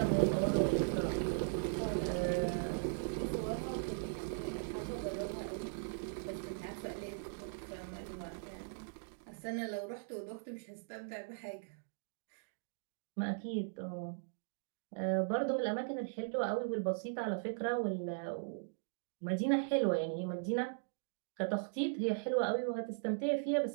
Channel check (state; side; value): silent; left; digital silence